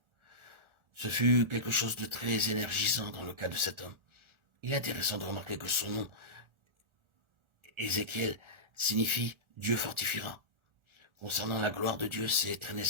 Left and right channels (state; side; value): late; left; 1.4 ms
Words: Ce fut quelque chose de très énergisant dans le cas de cet homme. Il est intéressant de remarquer que son nom, Ézéchiel, signifie Dieu fortifiera. Concernant la gloire de Dieu, c'est très